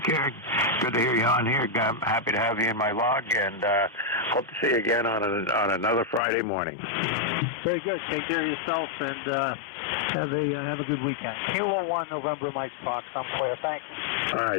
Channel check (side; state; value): right; drops out; at 6.2 s